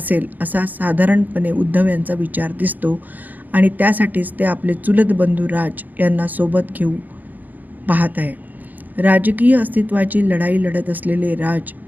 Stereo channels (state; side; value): late; left; 0.083 ms